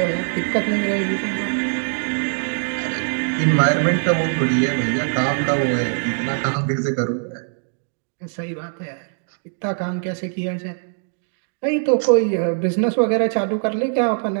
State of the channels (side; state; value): left; silent; digital silence